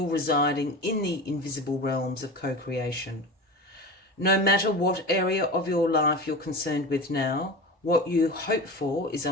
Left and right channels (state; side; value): normal; both; correlation 0.29